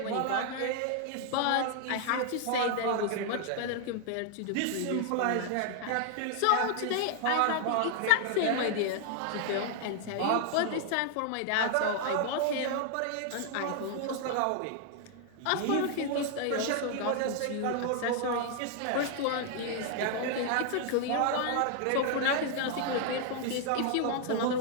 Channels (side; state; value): both; different; correlation 0.00